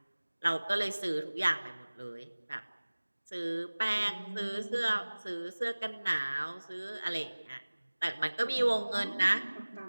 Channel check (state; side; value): inverted; both; correlation -1.00